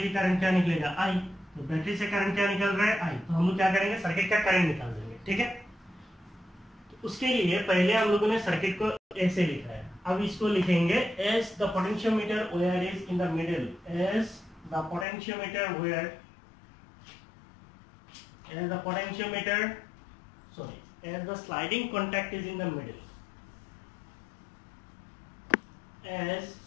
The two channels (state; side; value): drops out; right; at 15.1 s